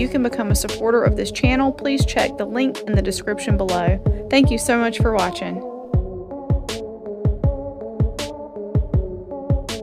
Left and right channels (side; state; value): both; identical; correlation 1.00